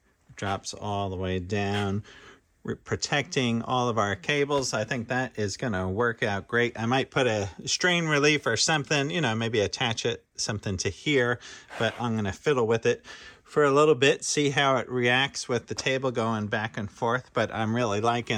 drops all the way down. We're protecting all of our cables. I think that is going to work out great. I might put a strain relief or something, you know, maybe attach it something to here, but I'm going to fiddle with it for a little bit, see how it reacts with the table going back and forth, but I'm really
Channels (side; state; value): both; identical; correlation 1.00